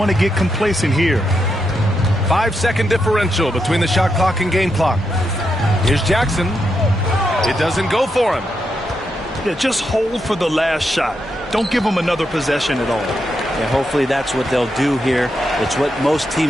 to get complacent here. 5-second differential between the shot clock and game clock. Here's Jackson. It doesn't go for him. Yeah, just hold for the last shot. Don't give him another possession at all. Yeah, hopefully that's what they'll do here. It's what most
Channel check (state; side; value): normal; both; correlation 0.83